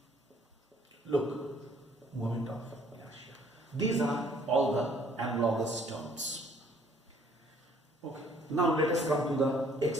Look, moment of inertia. These are all the analogous terms. Okay. Now let us come to the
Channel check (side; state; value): both; normal; correlation 0.60